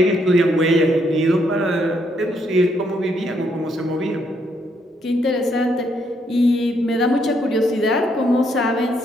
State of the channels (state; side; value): normal; both; correlation 0.73